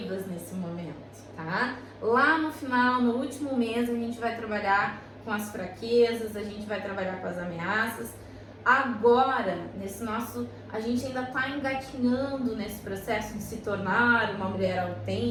nesse momento, tá? Lá no final, no último mês, a gente vai trabalhar com as fraquezas, a gente vai trabalhar com as ameaças. Agora, a gente ainda está engatinhando nesse processo de se tornar uma mulher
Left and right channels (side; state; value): both; identical; correlation 1.00